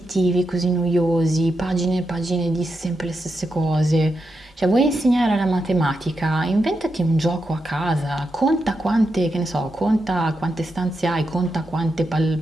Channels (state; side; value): normal; both; correlation 0.86